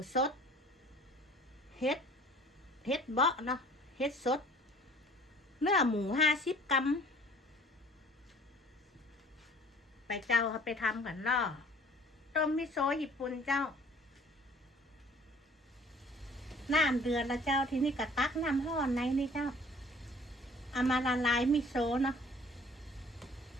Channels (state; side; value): normal; both; correlation 0.52